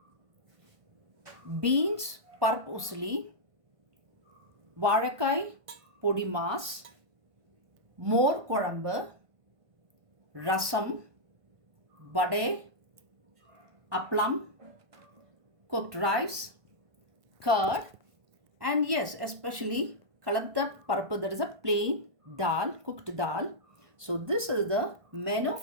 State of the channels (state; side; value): late; left; 1.5 ms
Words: Beans Paruppu Usili, Vadai Podimas, Mor Kuzhambu, Rasam, Vadai, Aplam, cooked rice, curd, and yes, especially kaladda parappu, that is a plain dal, cooked dal. So this is the menu